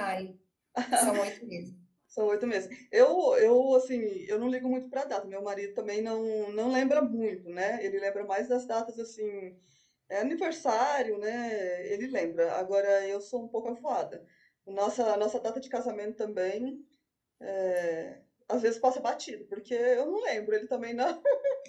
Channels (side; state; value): both; identical; correlation 1.00